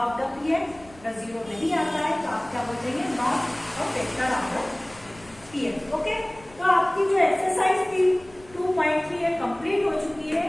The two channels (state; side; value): noise; left; rumble, 25 dB below the sound